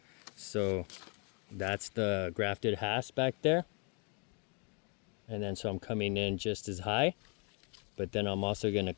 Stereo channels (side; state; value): right; quieter; 36.2 dB